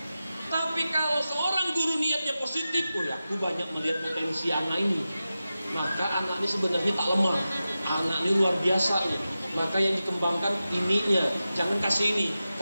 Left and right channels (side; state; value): both; inverted; correlation -0.93